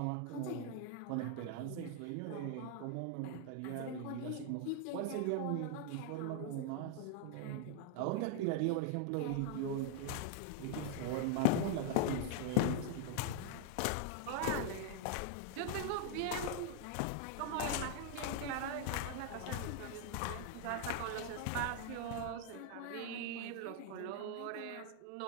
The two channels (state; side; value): different; both; correlation 0.00